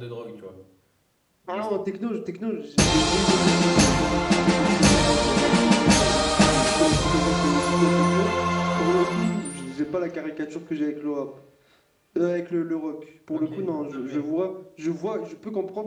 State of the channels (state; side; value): identical; both; correlation 1.00